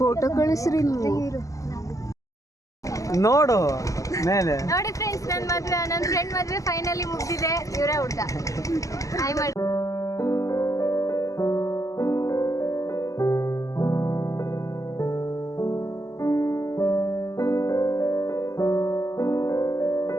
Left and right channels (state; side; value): late; right; 0.16 ms